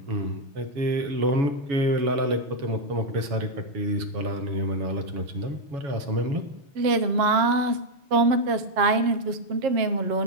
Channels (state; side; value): late; left; 7.4 ms